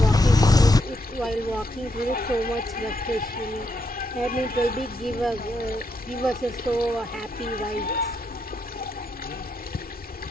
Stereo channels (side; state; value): both; normal; correlation 0.80